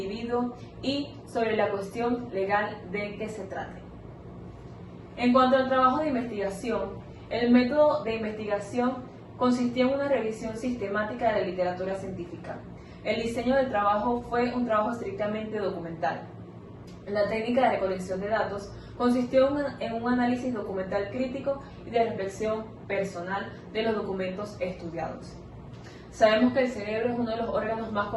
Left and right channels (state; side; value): identical; both; correlation 1.00